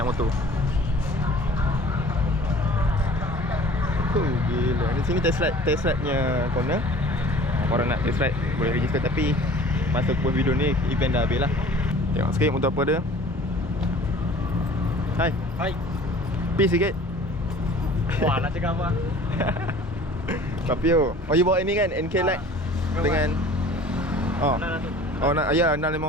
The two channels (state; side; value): normal; both; correlation 0.47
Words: motor. Gila. Di sini test ride-nya corner. Korang nak test ride boleh register, tapi masa aku buat video ni event dah habis lah. Tengok sikit motor apa dia. Hai. Peace sikit. Wah, nak cakap apa? Papio. Oh, you bawa ini kan NK Light dengan nak ya